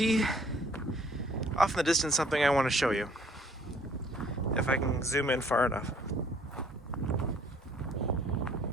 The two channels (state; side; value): normal; both; correlation 0.59